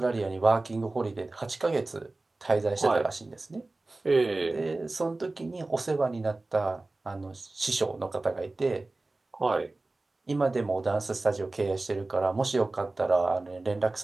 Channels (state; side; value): quieter; left; 3.1 dB